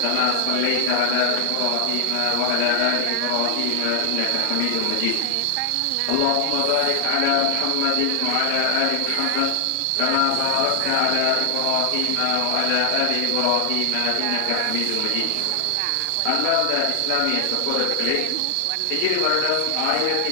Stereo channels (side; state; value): both; different; correlation 0.00